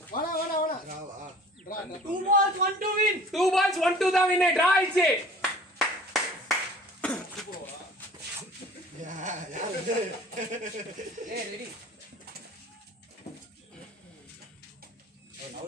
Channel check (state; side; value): normal; both; correlation 0.46